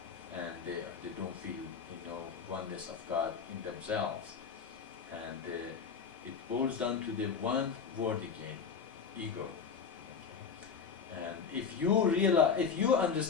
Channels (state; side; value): quieter; right; 6.1 dB